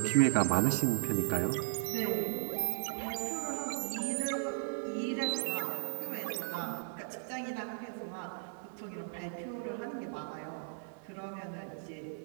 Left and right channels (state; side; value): silent; left; digital silence